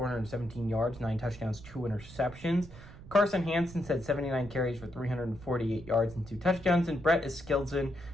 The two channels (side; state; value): right; noise; rumble, 17 dB below the sound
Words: yards, 9 touchdowns, 2 interceptions. Carson Hansen's had 79 carries for 348 yards and 2 touchdowns, and Brett Eskildsen